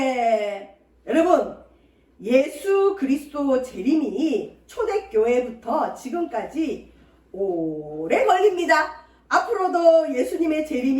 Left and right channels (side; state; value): both; identical; correlation 1.00